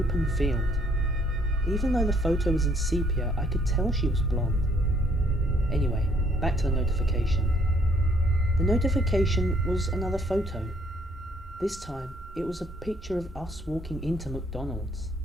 field. Even though the photo was in sepia, I could tell she was blonde. Anyway, back to the notification. The notification was another photo. This time, it was a picture of us walking into McDonald's.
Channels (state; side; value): normal; both; correlation 0.65